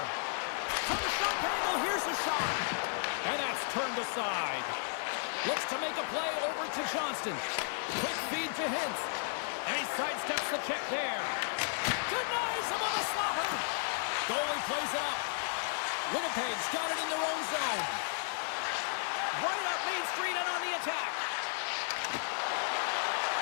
From the shot angle, here's a shot. And that's turned aside. Looks to make a play over to Johnston. Quick feed to Hintz. And he sidesteps the check there. Denies him on the slaughter. Goalie plays it up. Winnipeg's got it in their own zone. Right up Main Street and on the attack.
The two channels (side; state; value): right; silent; digital silence